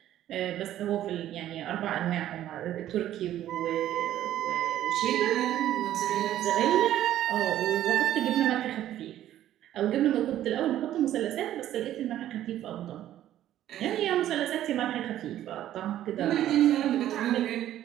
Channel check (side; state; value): left; quieter; 12.4 dB